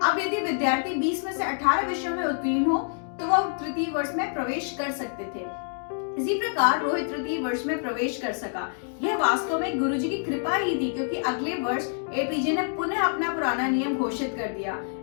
अब यदि विद्यार्थी 20 में से 18 विषयों में उत्तीर्ण हो तो वह तृतीय वर्ष में प्रवेश कर सकते थे। इसी प्रकार रोहित तृतीय वर्ष में प्रवेश कर सका। यह वास्तव में गुरुजी की कृपा ही थी, क्योंकि अगले वर्ष एपीजे ने पुनः अपना पुराना नियम घोषित कर दिया।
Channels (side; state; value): right; silent; digital silence